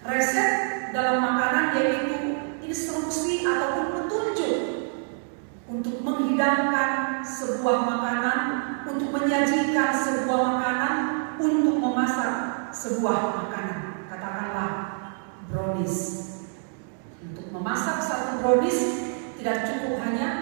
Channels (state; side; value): silent; left; 55 dB below the other